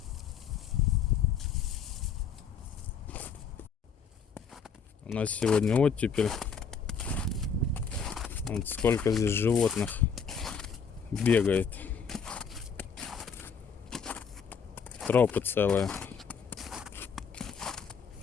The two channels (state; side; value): quieter; right; 6.2 dB